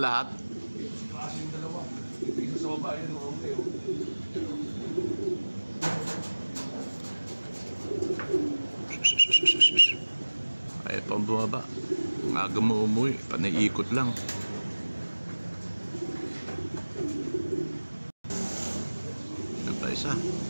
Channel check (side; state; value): both; inverted; correlation -1.00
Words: Sa taas yung dalawa. Ito isa sa baba. Yun, okay. Ay, pang bumaba. Ang aga mo umuwi. Panaiikot lang. Ano pa isa?